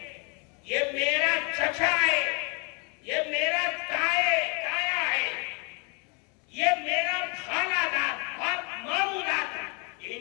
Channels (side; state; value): right; quieter; 33.8 dB